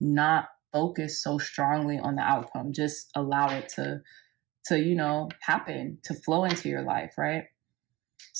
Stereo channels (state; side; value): quieter; left; 19.9 dB